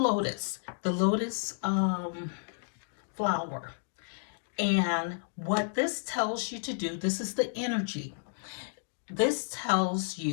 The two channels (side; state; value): right; silent; digital silence